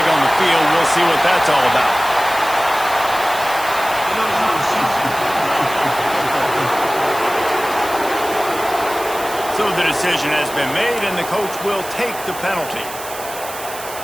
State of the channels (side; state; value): right; noise; hiss, 12 dB below the sound